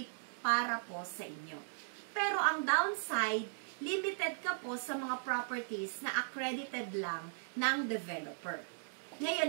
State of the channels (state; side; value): silent; left; digital silence